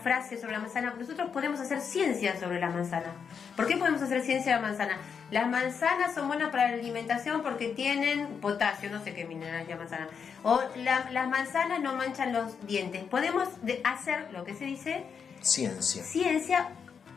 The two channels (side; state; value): right; quieter; 6.5 dB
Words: sobre la manzana. Nosotros podemos hacer ciencia sobre la manzana. ¿Por qué podemos hacer ciencia de la manzana? Las manzanas son buenas para la alimentación porque tienen potasio, no sé qué mineral es la manzana. O las manzanas no manchan los dientes. Podemos hacer lo que se dice ciencia